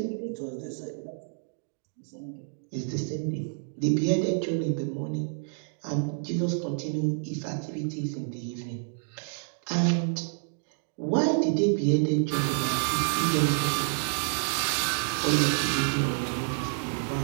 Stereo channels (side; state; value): left; silent; digital silence